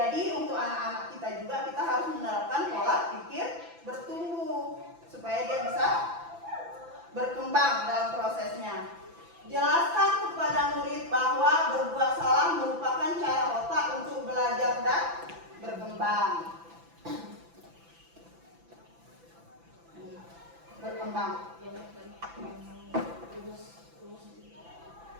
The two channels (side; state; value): left; late; 5.9 ms